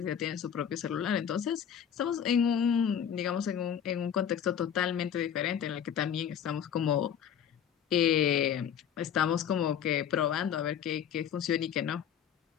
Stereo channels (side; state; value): right; quieter; 8.7 dB